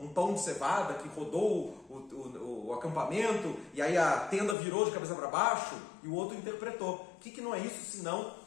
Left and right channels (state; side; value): drops out; right; at 4.5 s